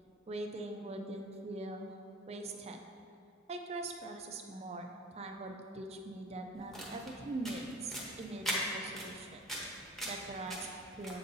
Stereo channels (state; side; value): normal; both; correlation 0.40